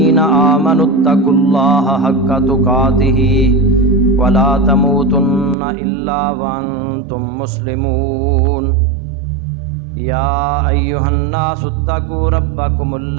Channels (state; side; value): drops out; left; at 5.6 s